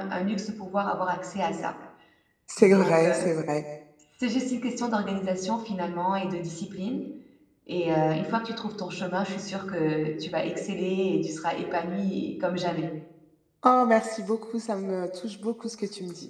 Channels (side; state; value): both; identical; correlation 1.00